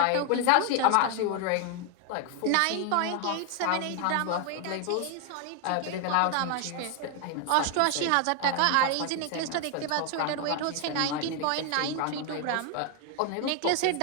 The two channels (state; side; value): different; both; correlation 0.01